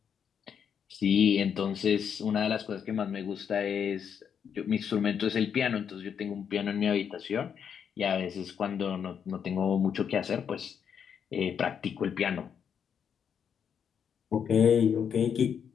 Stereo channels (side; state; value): right; quieter; 7.6 dB